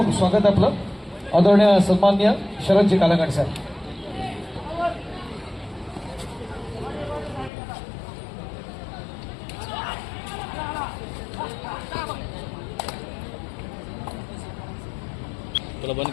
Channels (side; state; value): right; drops out; at 7.5 s